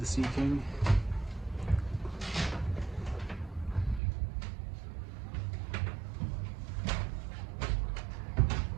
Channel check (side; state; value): left; drops out; at 4.0 s